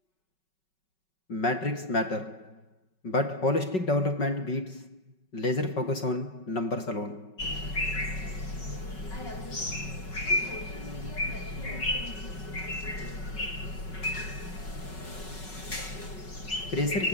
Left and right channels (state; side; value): late; right; 5.3 ms